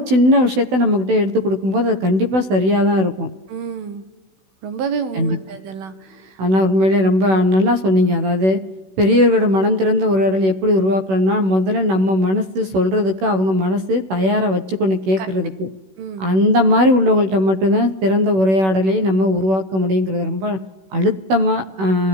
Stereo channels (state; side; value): late; left; 16 ms